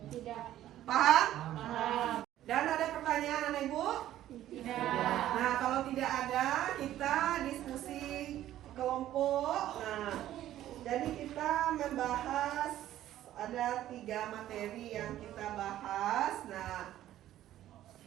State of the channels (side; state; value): left; quieter; 13.0 dB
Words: Tidak. Paham? Paham. Dan ada pertanyaan anak ibu? Tidak. Nah, kalau tidak ada, kita diskusi kelompok. Nah, jadi kita membahas ada 3 materi yang kita bahas. Nah,